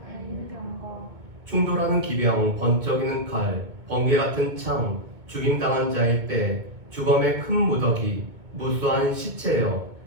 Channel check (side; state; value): left; late; 2.2 ms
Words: 달리는 병거. 충돌하는 기병, 번쩍이는 칼, 번개 같은 창, 죽임당한 자의 때, 주검의 큰 무더기, 무수한 시체여,